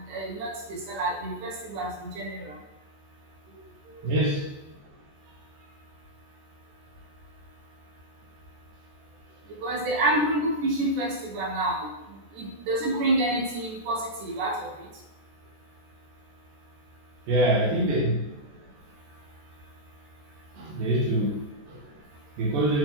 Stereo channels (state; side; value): late; left; 14 ms